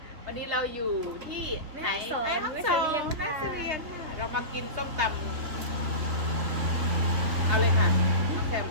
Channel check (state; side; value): late; left; 3.3 ms